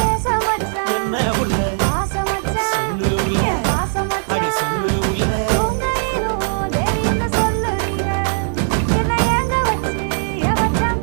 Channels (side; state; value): left; silent; digital silence